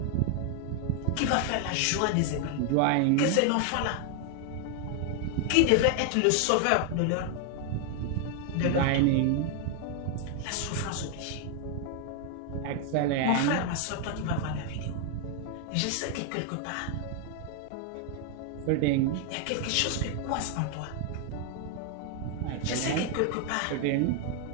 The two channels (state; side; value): different; both; correlation 0.00